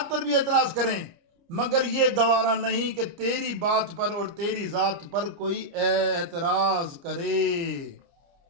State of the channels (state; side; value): late; left; 29 ms